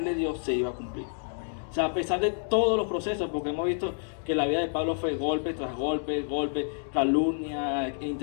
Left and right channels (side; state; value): right; silent; digital silence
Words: le dio se iba a cumplir. O sea, a pesar de todos los procesos, porque hemos visto que la vida de Pablo fue golpe tras golpe, calumnia,